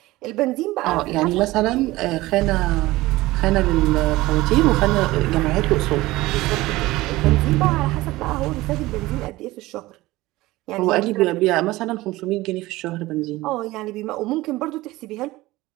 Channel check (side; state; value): left; quieter; 18.8 dB